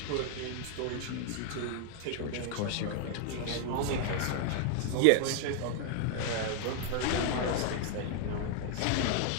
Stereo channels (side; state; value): both; different; correlation 0.00